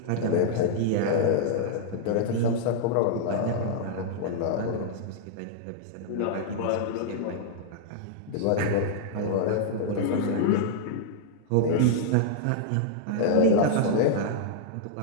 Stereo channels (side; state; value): both; different; correlation -0.01